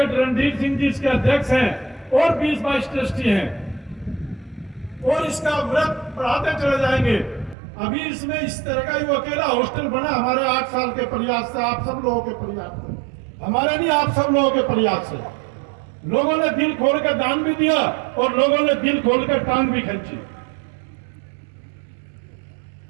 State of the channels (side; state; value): left; drops out; at 7.6 s